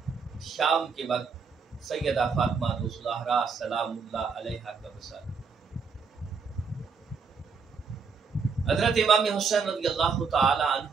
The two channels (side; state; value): left; quieter; 5.4 dB